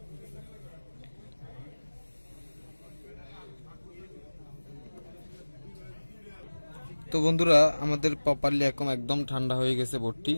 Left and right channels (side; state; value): both; inverted; correlation -1.00